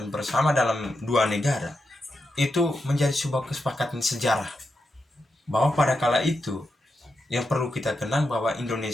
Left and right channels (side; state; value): both; normal; correlation 0.87